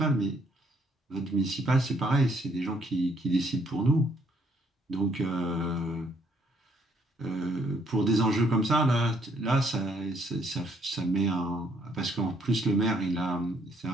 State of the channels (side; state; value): both; normal; correlation 0.68